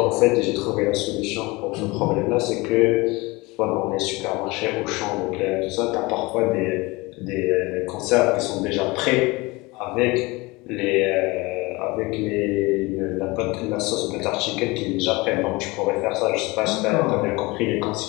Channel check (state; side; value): quieter; right; 23.5 dB